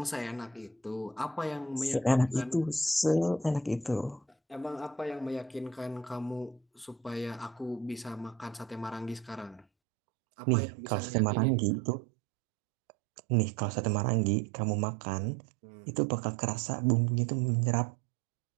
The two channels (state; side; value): drops out; left; at 9.7 s